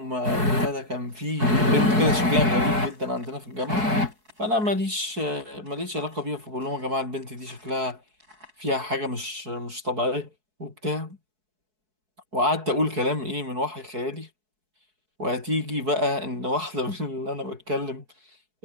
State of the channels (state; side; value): late; left; 4.6 ms